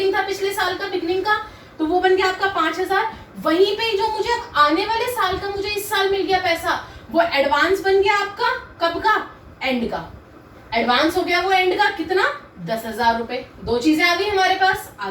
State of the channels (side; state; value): both; identical; correlation 1.00